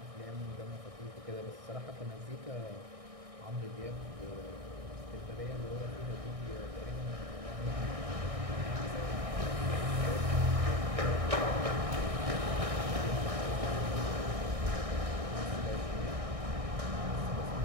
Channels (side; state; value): left; late; 1.6 ms